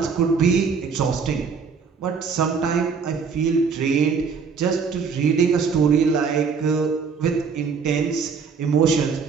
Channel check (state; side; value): quieter; left; 5.6 dB